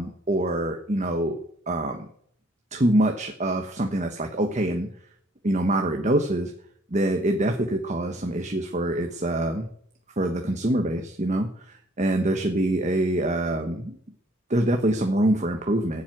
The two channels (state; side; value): normal; both; correlation 0.62